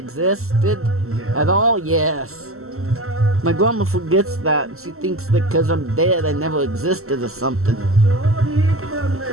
at all, yes. My grandma forgets that. She thinks that because I'm dead, I never existed or something.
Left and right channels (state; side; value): late; left; 0.63 ms